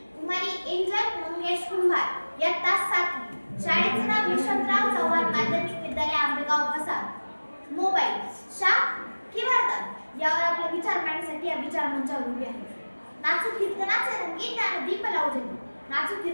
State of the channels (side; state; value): both; inverted; correlation -1.00